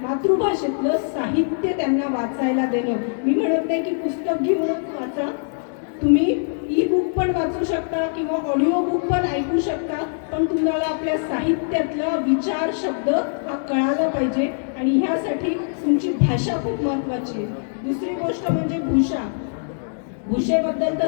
मातृभाषेतलं साहित्य त्यांना वाचायला देणं. मी म्हणत नाही की पुस्तक घेऊनच वाचा, तुम्ही ई बुक पण वाचू शकता किंवा ऑडिओ बुक पण ऐकू शकता, पण तुम्हाला आपल्या साहित्यातला विचार शब्द हा कळाला पाहिजे. आणि ह्यासाठी तुमची भाषा खूप महत्त्वाची आहे. दुसरी गोष्ट म्हणजे भाषा. भाषेबद्दल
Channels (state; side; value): silent; right; digital silence